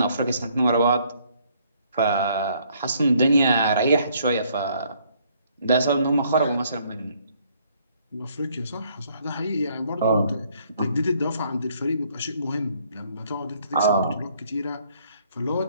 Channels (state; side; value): inverted; both; correlation -0.66